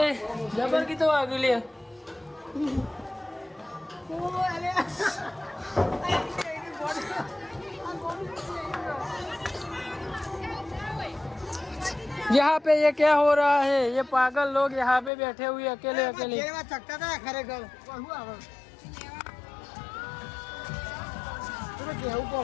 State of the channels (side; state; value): right; drops out; at 15.1 s